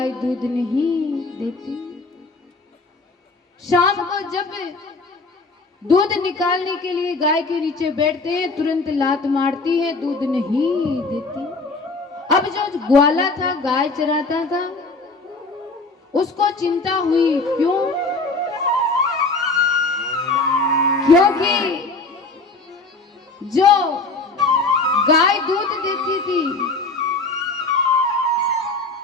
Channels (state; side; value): quieter; right; 3.5 dB